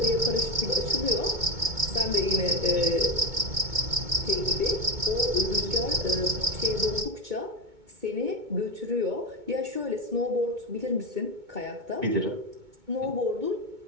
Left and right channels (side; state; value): left; late; 2.2 ms